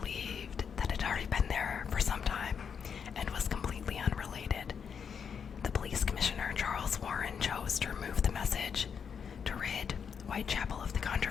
that it had already been there for some time and was completely unrelated. The police commissioner, Charles Warren, chose to remove the message to rid Whitechapel of the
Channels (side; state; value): right; quieter; 6.9 dB